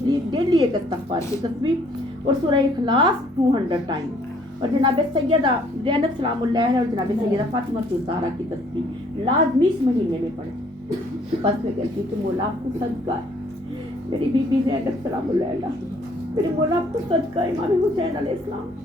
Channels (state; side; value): normal; both; correlation 0.62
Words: डेली एक इस्तग़फ़ार की तस्बीह और सूरह इखलास 200 टाइम और जनाब सैयदा ज़ैनब सलामुल्लाह और जनाब सैयदा फातिमा ज़हरा की तस्बीह लाजमी इस महीने में पढ़े। बस मैं कहती हूँ कि मौला आपको सदका है, मेरी बीबी ज़ैनब सलामुल्लाह, मेरे मौला आपको सदका इमाम हुसैन अलैहिस्सलाम,